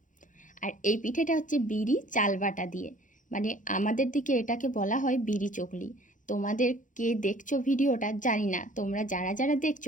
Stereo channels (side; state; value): right; late; 0.37 ms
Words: আর এই পিঠেটা হচ্ছে বিড়ি চাল বাটা দিয়ে। মানে আমাদের দিকে এটাকে বলা হয় বিড়ি চকলি। তোমাদের কে দেখছো ভিডিওটা জানি না, তোমরা যারা যারা